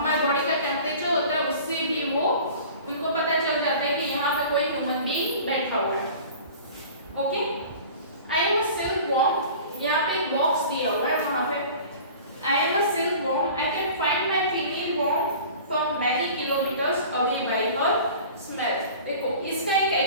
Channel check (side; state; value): both; inverted; correlation -0.42